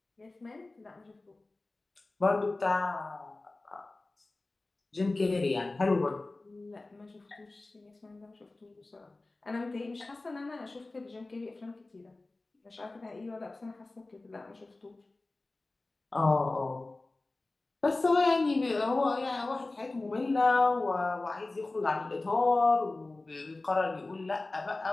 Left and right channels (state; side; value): quieter; right; 3.1 dB